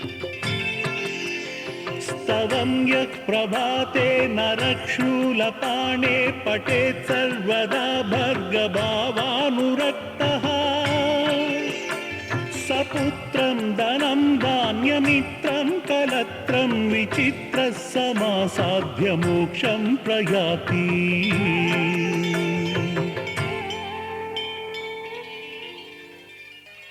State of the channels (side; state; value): both; identical; correlation 1.00